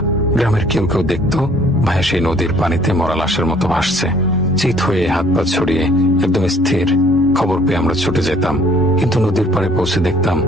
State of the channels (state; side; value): normal; both; correlation 0.58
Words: গ্রামের কেউ কেউ দেখত ভাইয়া সেই নদীর পানিতে মরা লাশের মতো ভাসছে, চিত হয়ে হাত পা ছড়িয়ে একদম স্থির। খবর পেয়ে আমরা ছুটে যেতাম, কিন্তু নদীর পাড়ে পৌঁছে দেখতাম